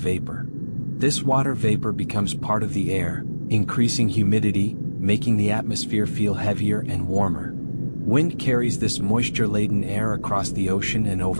This water vapor becomes part of the air, increasing humidity, making the atmosphere feel heavier and warmer. Wind carries this moisture-laden air across the ocean and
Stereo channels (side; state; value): both; inverted; correlation -1.00